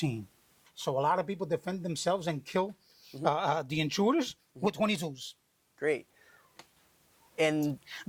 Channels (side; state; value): both; identical; correlation 1.00